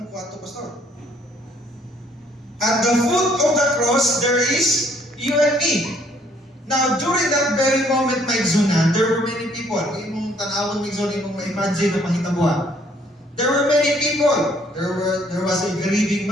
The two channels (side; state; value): both; normal; correlation 0.64